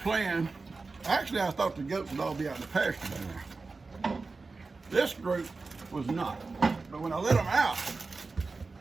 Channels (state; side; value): quieter; left; 3.9 dB